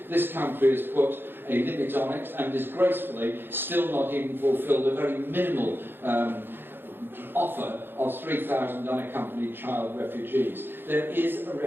This country has put a limit on it and disgracefully still not even fulfilled a very minimal offer of 3,000 unaccompanied child refugees. There is a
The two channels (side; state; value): left; late; 0.10 ms